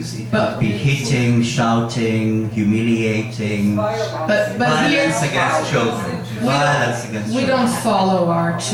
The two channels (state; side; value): identical; both; correlation 1.00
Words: It could be hitting, shouting, humiliating, But violence here against children. Violence against we children. don't follow our